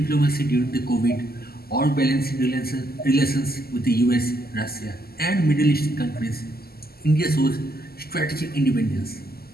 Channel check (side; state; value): right; late; 0.45 ms